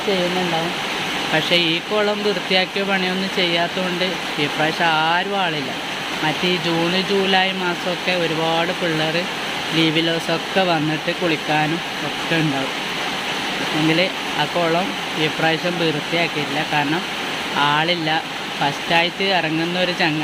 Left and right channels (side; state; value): both; identical; correlation 1.00